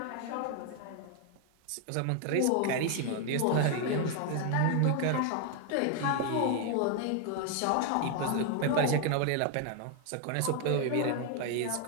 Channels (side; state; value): both; different; correlation 0.01